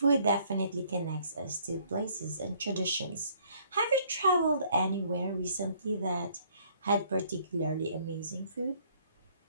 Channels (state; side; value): inverted; both; correlation -0.62